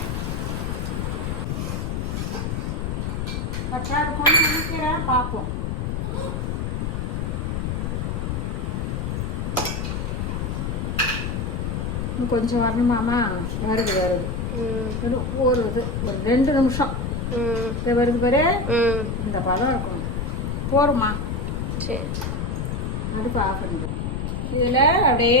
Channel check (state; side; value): noise; left; rumble, 2 dB below the sound